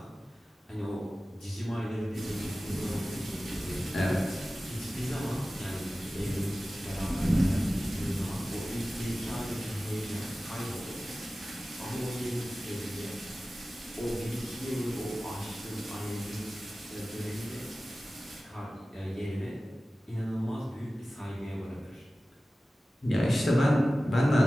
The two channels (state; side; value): normal; both; correlation 0.96